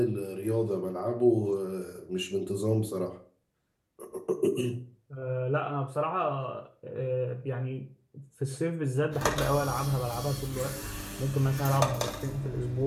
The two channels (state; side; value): identical; both; correlation 1.00